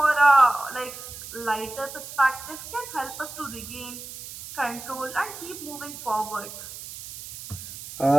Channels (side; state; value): right; noise; hiss, 12 dB below the sound